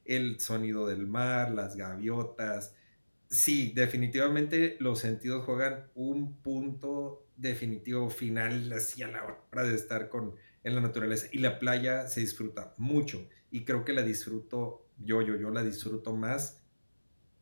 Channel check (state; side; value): inverted; both; correlation -1.00